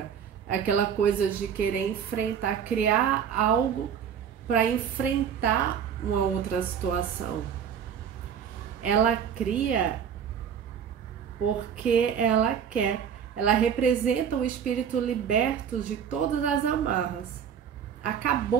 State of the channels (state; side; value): quieter; left; 8.0 dB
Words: aquela coisa de querer enfrentar, criar algo para enfrentar uma outra situação. Ela cria porque ela quer. Ela representa o espírito liberto de todas as amarras.